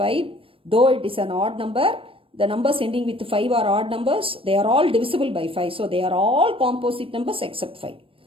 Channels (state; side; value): late; left; 0.26 ms